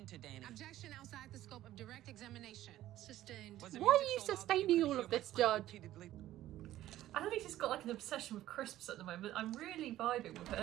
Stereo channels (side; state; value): left; quieter; 14.0 dB